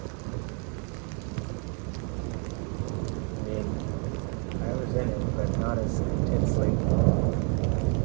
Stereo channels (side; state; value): left; quieter; 38.6 dB